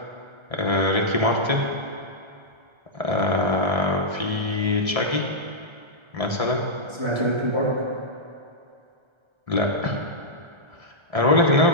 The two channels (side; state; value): left; late; 1.3 ms